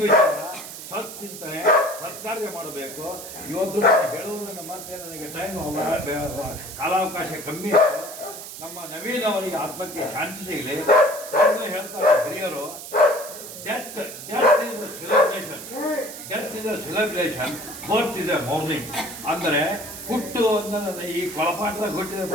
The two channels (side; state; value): right; noise; hiss, 11 dB below the sound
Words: ಸತ್ಚಿಂತನೆ ಸತ್ಕಾರ್ಯ ಮಾಡಬೇಕು. ಇವತ್ತು ನಾನು ಹೇಳುವುದನ್ನು ಮತ್ತೆ ನನಗೆ ಟೈಮ್ ಕಾಲಾವಕಾಶ ಕಮ್ಮಿ ಇತ್ತು. ನಮ್ಮ ನವೀನ್ ಅವರಿಗೆ ಆತ್ಮಕ್ಕೆ ಶಾಂತಿ ಸಿಗಲಿ. ಅದನ್ನೇ ಹೇಳ್ತಾರೆ ಹಿರಿಯರು, death is a celebration, death is a celebration, birth is a ಮೌರ್ನಿಂಗ್. ಅಂದರೆ ಹುಟ್ಟು ಅಂದರೆ ಈ ಕೊಳಪಾಟದಾಗ ಹುಟ್ಟಿದ